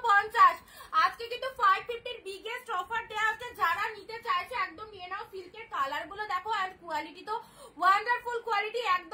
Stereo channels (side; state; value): both; identical; correlation 1.00